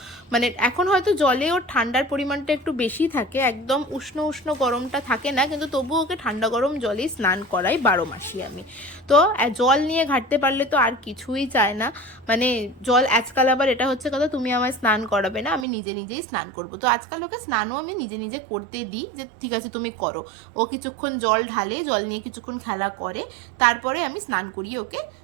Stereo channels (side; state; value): left; drops out; at 15.7 s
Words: মানে এখন হয়তো জলে ওর ঠান্ডার পরিমাণটা একটু বেশি থাকে, একদম উষ্ণ উষ্ণ গরমটা থাকে না, কিন্তু তবুও ওকে ঠান্ডা গরম জলেই স্নান করাই 12 মাসই আমি। তো জল নিয়ে ঘাটতে পারলে তো আর কিছুই চায় না, মানে জল আজকাল আবার এটা হচ্ছে কথা তুমি আমায় স্নান করাবে না, আমি নিজে নিজেই স্নান করব। তো আজকাল ওকে স্নানও আমি নিজে নিজে করতে দিই, যে ঠিক আছে তুমি করো। ও কিছুক্ষণ জল ঢালে, জল নিয়ে কিছুক্ষণ খেলা করে, তারপরে আমি স্নান করিয়ে ওকে